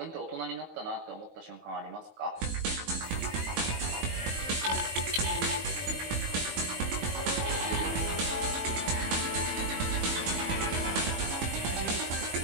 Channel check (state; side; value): late; left; 20 ms